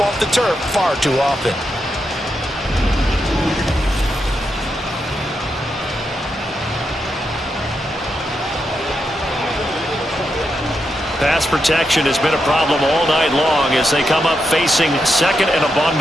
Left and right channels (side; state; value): both; normal; correlation 0.84